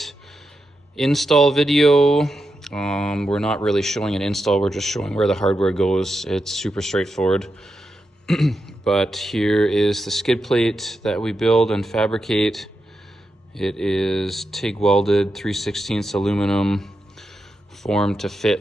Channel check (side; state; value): both; normal; correlation 0.87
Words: install video. We're not really showing an install, we're just showing where the hardware goes. It's super straightforward. But here is the skid plate that we build and fabricate. It is TIG welded 3/16 aluminum, formed to